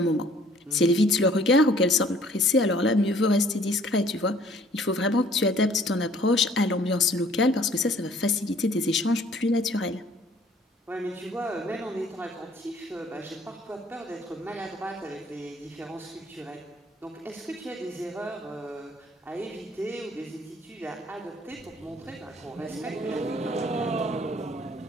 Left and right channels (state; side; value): normal; both; correlation 0.57